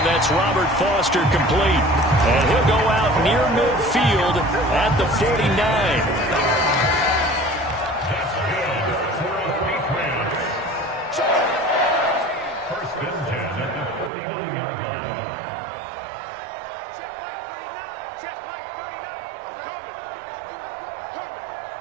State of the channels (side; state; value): left; drops out; at 14.1 s